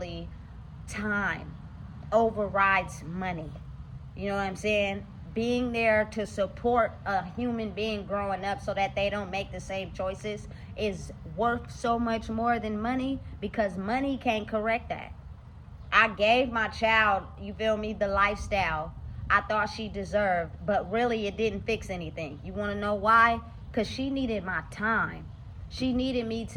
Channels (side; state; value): both; identical; correlation 1.00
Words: time overrides money. You know what I'm saying? Being there to support a human being growing up so that they don't make the same choices is worth so much more than money, because money can't correct that. I gave my child, you feel me, the lifestyle I thought she deserved, but really it didn't fix anything. You want to know why? Because she needed my time. She needed me